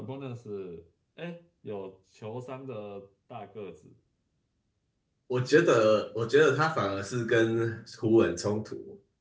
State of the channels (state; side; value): identical; both; correlation 1.00